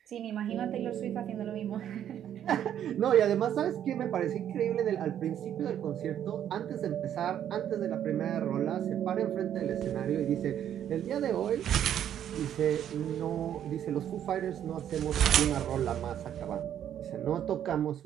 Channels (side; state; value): left; quieter; 10.2 dB